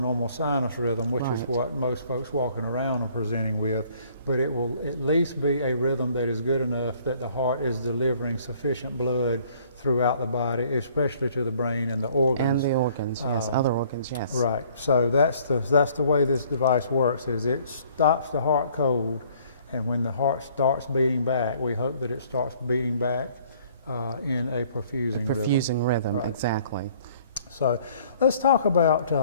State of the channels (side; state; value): both; inverted; correlation -0.59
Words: sinus rhythm, which is Right. what most folks walking around are presenting with, but it will at least be a rhythm that is good enough that the heart is delivering sufficient blood throughout the body, especially to the brain and the organs. And the organs, yes. Other organs, yes. Right. So that's the way this device works, is it stops the heart cold, and when the heart starts beating back, we hope that it starts beating back in a perfusing rhythm. Perfusing rhythm, Right. exactly. So let's talk about